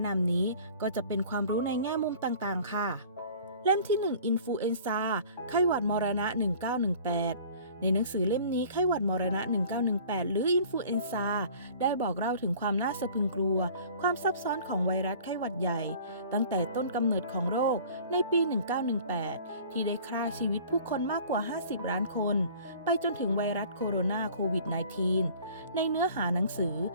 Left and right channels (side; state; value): both; inverted; correlation -0.47